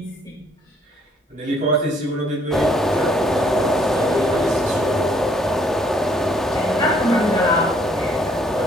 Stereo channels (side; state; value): both; normal; correlation 0.65